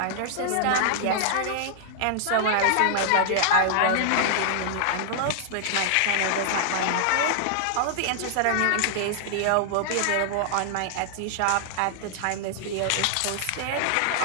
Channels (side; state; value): both; different; correlation -0.01